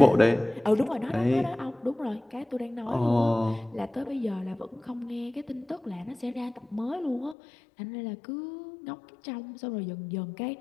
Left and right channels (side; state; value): right; drops out; at 7.4 s